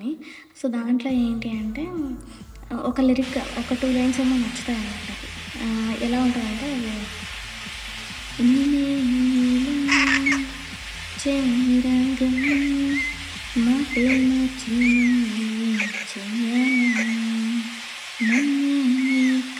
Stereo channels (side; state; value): both; identical; correlation 1.00